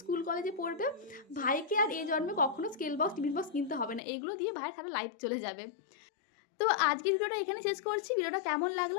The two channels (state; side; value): drops out; right; at 4.0 s